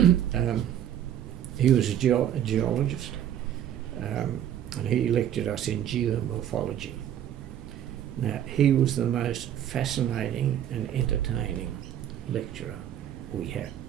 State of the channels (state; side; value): quieter; left; 10.5 dB